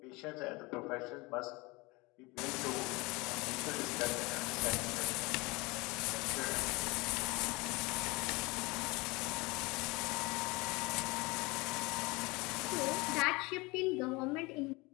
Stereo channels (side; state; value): right; quieter; 24.5 dB